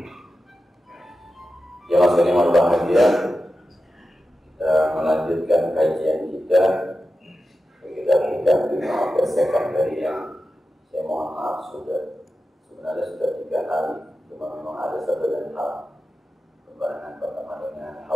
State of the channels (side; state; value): both; normal; correlation 0.92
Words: Jemaah sekalian berbahagia, kita melanjutkan kajian kita. Kita di Ma'akas Sekandari yang saya mohon maaf sebenarnya sudah 3 hari, cuma memang ada satu dan hal pembahasan pertama dengan